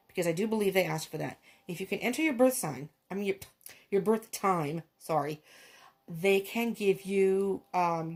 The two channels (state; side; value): identical; both; correlation 1.00